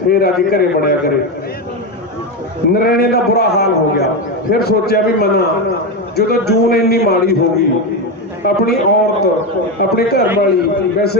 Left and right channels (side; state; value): both; normal; correlation 0.13